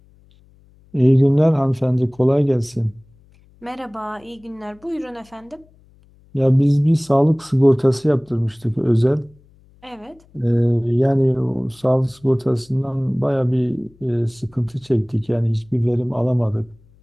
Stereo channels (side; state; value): left; noise; hum, 30 dB below the sound